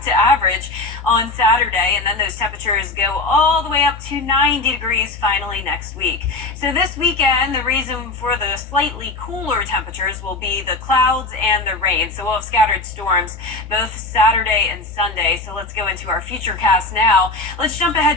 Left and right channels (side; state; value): right; quieter; 3.2 dB